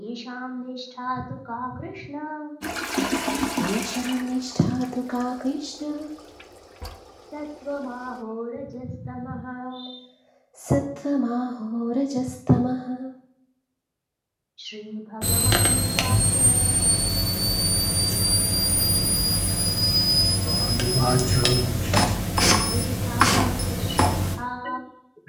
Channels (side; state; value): both; identical; correlation 1.00